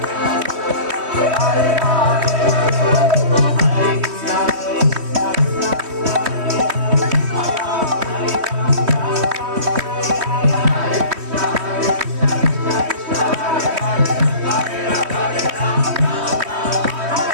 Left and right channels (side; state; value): left; late; 3.1 ms